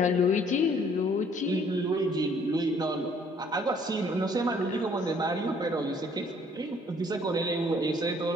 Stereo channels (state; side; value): normal; both; correlation 0.60